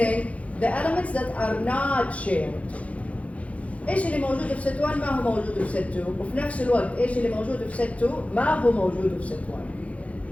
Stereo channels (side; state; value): right; late; 0.065 ms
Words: the elements that are not shared. ايش اللي موجود في ست 1 ما هو موجود في ست 2 وفي نفس الوقت ايش اللي موجود في ست 2 ما هو موجود في ست 1.